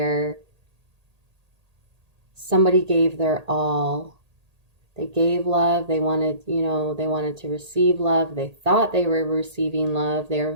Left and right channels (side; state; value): left; late; 1.8 ms